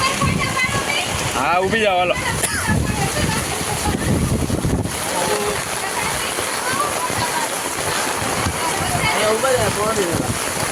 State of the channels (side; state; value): both; identical; correlation 1.00